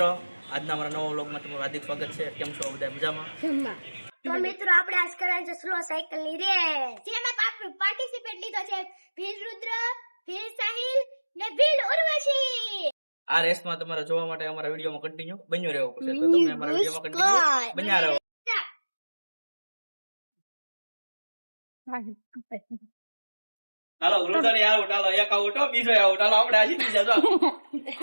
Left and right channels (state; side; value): inverted; both; correlation -1.00